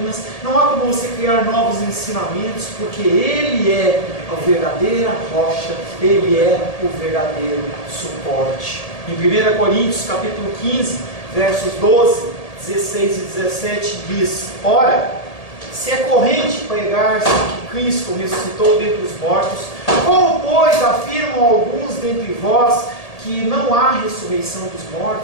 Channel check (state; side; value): late; right; 1.8 ms